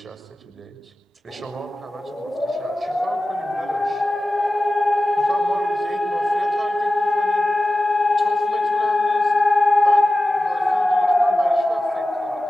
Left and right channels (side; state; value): both; normal; correlation 0.94